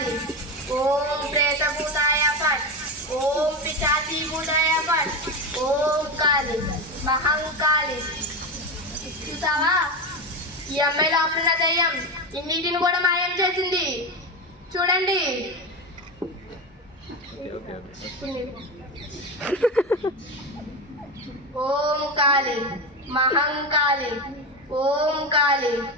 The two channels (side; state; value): both; normal; correlation 0.18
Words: ఓం ప్రేత భూతాయ పట్, ఓం పిశాచి భూతాయ పట్, ఓం కాళి మహంకాళి. చూసావా, ఈ అమ్మాయి లోపల దయ్యం ఇన్నిటిని కూడా మాయం చేసింది. చూడండి. ఓం కాళి మహంకాళి, ఓం కాళి